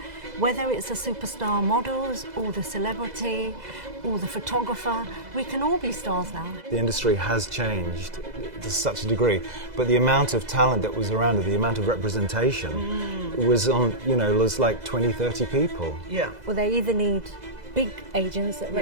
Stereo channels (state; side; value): late; left; 2.0 ms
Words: whether it's the superstar models or the celebrity or the photographer. We can all be stars now. The industry has changed to such a degree, but the amount of talent that was around, the amount of representation was on, was like 20, 30 people. Yeah. Well, they either need big agents that